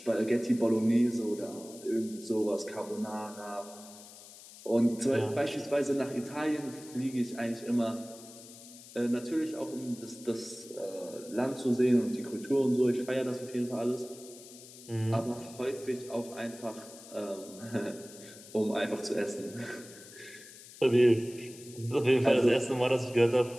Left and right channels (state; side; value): noise; left; hiss, 18 dB below the sound